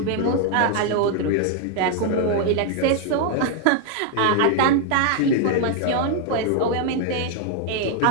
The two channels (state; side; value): different; both; correlation 0.00